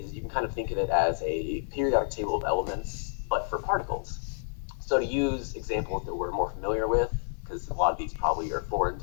you can kind of think of it as a periodic table of elements, but for particles. So to use examples that we're more familiar with, because a lot of these probably are foreign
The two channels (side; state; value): right; silent; 58 dB below the other